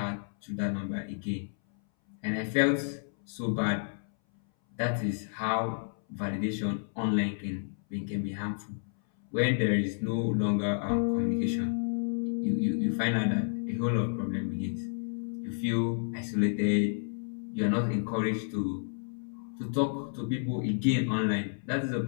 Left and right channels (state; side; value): silent; right; 57 dB below the other